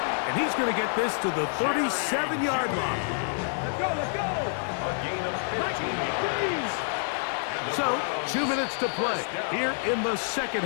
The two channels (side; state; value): right; silent; digital silence